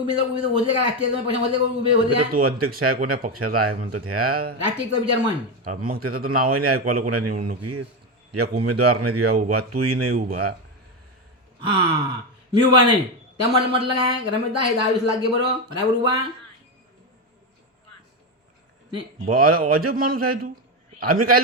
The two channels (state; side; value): normal; both; correlation 0.12